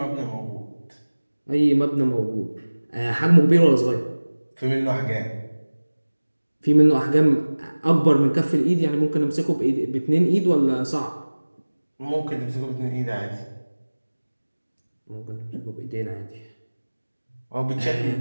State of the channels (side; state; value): both; inverted; correlation -1.00